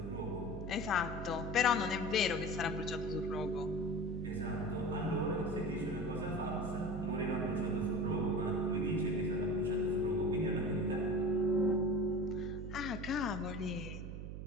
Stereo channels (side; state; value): right; noise; hum, 7 dB below the sound